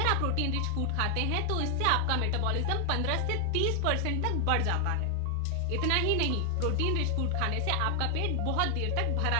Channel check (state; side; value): different; both; correlation 0.00